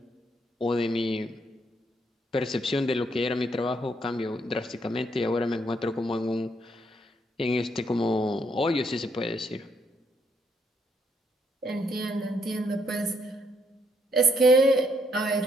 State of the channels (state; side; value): normal; both; correlation 0.73